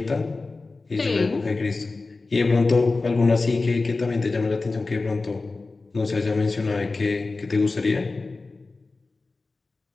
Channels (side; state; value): right; quieter; 3.6 dB